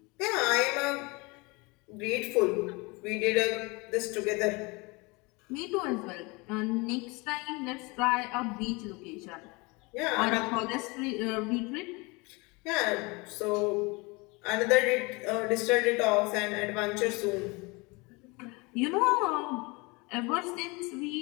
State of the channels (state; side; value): quieter; right; 26.5 dB